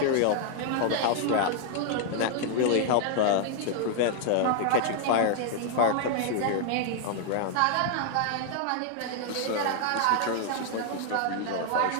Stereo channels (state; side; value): different; both; correlation 0.00